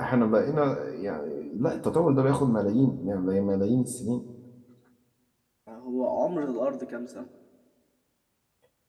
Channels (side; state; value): both; identical; correlation 1.00